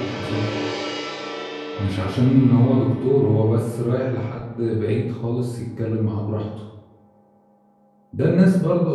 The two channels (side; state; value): both; identical; correlation 1.00